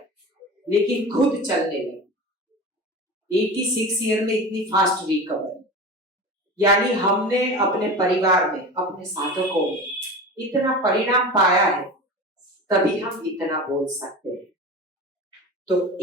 लेकिन खुद चलने लगी। 86 ईयर में इतनी फास्ट रिकवरी, यानी हमने अपने परिवार में, अपने साधकों में इतना परिणाम पाया है, तभी हम इतना बोल सकते हैं। तो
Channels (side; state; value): both; normal; correlation 0.31